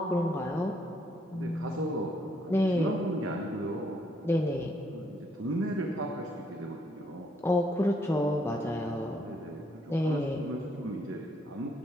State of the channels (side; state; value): both; normal; correlation 0.71